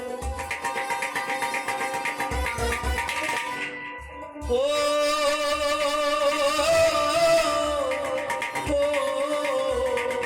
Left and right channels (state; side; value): identical; both; correlation 1.00